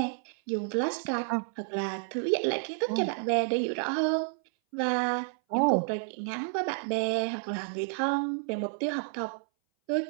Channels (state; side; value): silent; left; 58 dB below the other